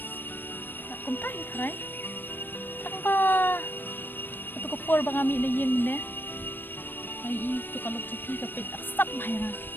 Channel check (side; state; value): right; late; 0.094 ms